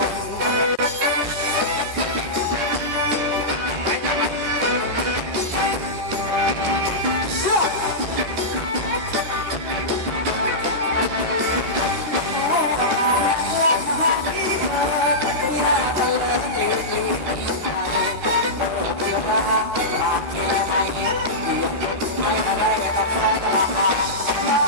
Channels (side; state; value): left; late; 13 ms